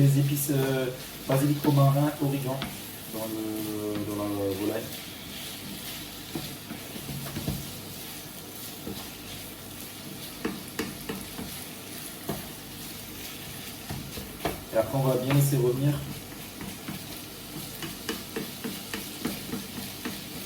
épices basilic, romarin, origan dans la volaille. Et après, on va bien laisser revenir.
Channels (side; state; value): both; identical; correlation 1.00